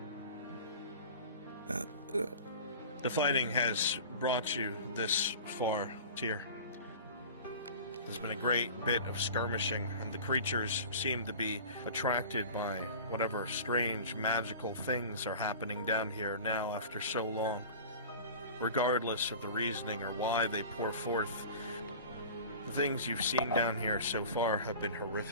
5. by. The fighting has brought you this far, Tyr. There's been a great bit of skirmishing, and the creatures seem to be attracted by whatever strange magical things are happening down here now after so long. Regardless of the reasoning or why they pour forth, the things you've seen down here so far have been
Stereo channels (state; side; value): inverted; both; correlation -0.38